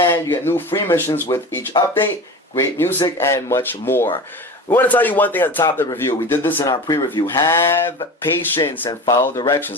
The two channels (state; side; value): normal; both; correlation 0.32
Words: you get new free missions with each update, great music, and much more. We want to tell you one thing at the top of the review. We did this in our pre-review. Have patience and follow